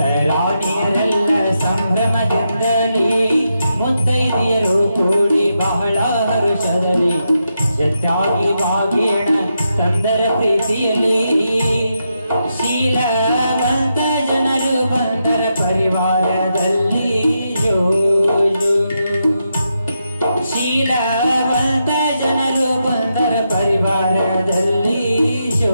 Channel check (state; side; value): inverted; both; correlation -0.84